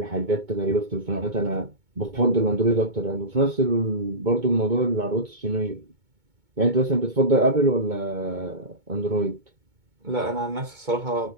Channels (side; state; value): left; late; 2.2 ms